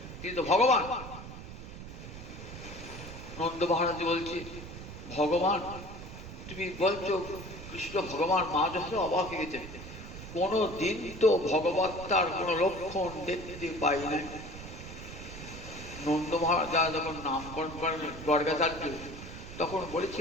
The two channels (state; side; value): noise; right; rumble, 12 dB below the sound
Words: তিনি তো ভগবান। নন্দ মহারাজ বলছে ভগবান, তুমি বলছো কৃষ্ণ ভগবান, মা যশোদা অবাক হয়ে গেছেন। কোনো দিন তো ভগবত্তার কোনো লক্ষণ দেখতে পাই না। নন্দ মহারাজ যখন নামকরণ করেন গর্গাচার্য, তখন